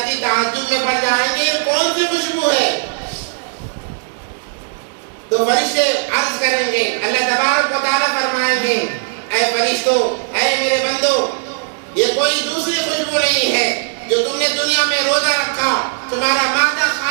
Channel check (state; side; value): silent; left; digital silence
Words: تعجب میں پڑ جائیں گے یہ کون سی خوشبو ہے؟ تو فرشتے عرض کریں گے، اللہ تبارک و تعالیٰ فرمائیں گے اے فرشتوں، اے میرے بندو، یہ کوئی دوسری خوشبو نہیں ہے جو تم نے دنیا میں روزہ رکھا، تمہارا معدہ